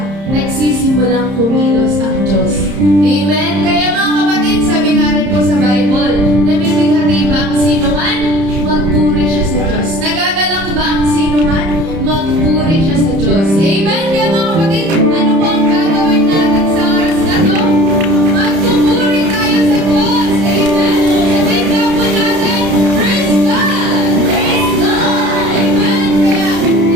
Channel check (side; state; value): left; late; 31 ms